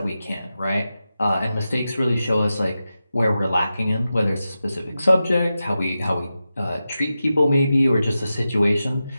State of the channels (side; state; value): both; inverted; correlation -0.92